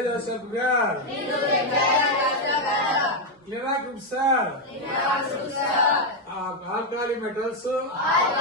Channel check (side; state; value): both; normal; correlation 0.03